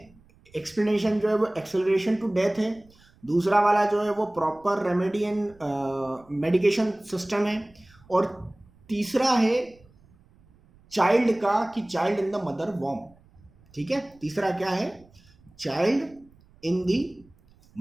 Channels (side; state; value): right; noise; rumble, 29 dB below the sound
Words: एक्सप्लेनेशन जो है वो एक्सेलरेशन टू डेथ है। दूसरा वाला जो है वो proper remedy and medication system है। और तीसरा है चाइल्ड का, कि चाइल्ड इन द मदर वॉर्म। ठीक है, तीसरा क्या है, चाइल्ड इन द